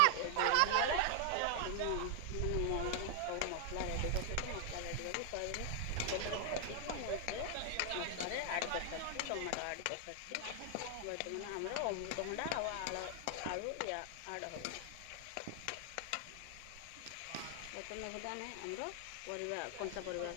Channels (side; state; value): both; different; correlation 0.00